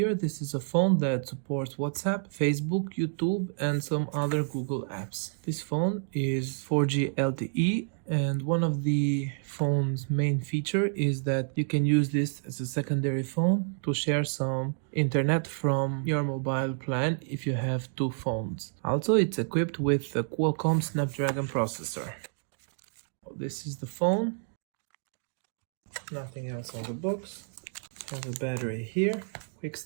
this is a phone that supports WhatsApp, Facebook, YouTube, and some other Google apps. This phone is 4G LTE, and one of the phone's main feature is that you can use this as a secondary phone to share some internet from your mobile plan if you have two phones. Also, it's equipped with a Qualcomm Snapdragon processor. This is the phone. Nothing else on the box. Have a battery here, quick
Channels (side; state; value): left; silent; digital silence